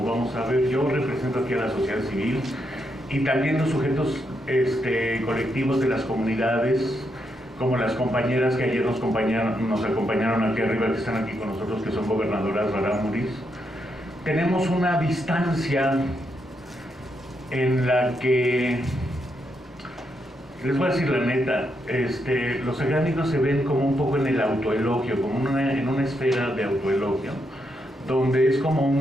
vamos a ver. Yo represento aquí a la sociedad civil y también los sujetos colectivos de las comunidades, como las compañeras que ayer nos acompañaron aquí arriba, que están aquí con nosotros, que son gobernadoras rarámuris. Tenemos una distancia en la que, les voy a decir la neta, los académicos se ven como un poco en el autoelogio, como en una esfera de autoelogio, donde es como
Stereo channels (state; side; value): normal; both; correlation 0.80